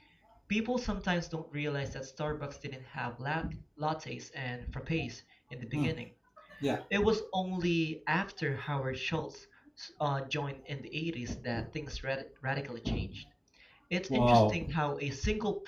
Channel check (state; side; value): identical; both; correlation 1.00